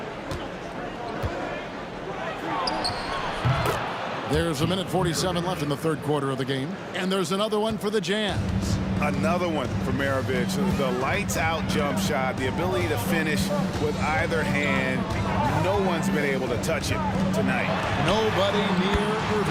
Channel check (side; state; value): both; identical; correlation 1.00